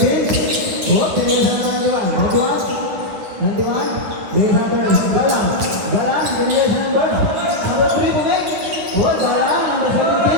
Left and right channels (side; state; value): left; late; 10 ms